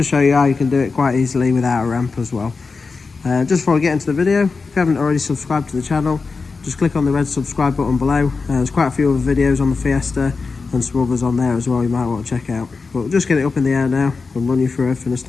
show you how you can do it quite easily without a ramp as well. Just before I get into the video, if you haven't already subscribed to the channel, just click on the red subscribe button below. There's quite a few other videos on the Fiesta and some others on there as well you might want to check out. But we'll just get it up in the air now and run you through everything a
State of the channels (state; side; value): quieter; right; 4.5 dB